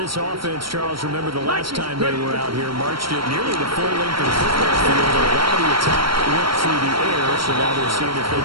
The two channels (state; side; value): late; left; 0.74 ms